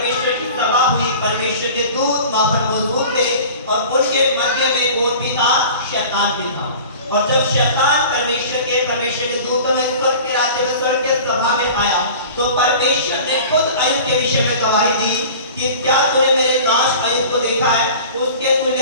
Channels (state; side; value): inverted; both; correlation -0.41